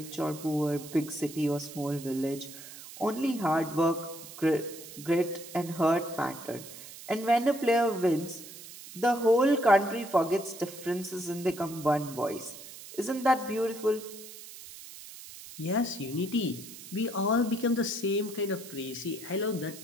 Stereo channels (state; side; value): noise; right; hiss, 15 dB below the sound